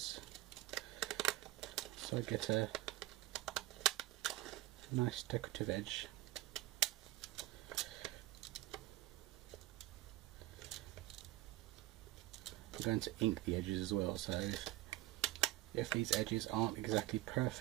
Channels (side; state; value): left; quieter; 16.8 dB